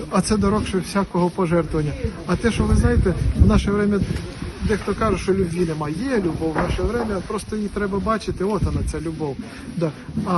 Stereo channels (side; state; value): both; identical; correlation 1.00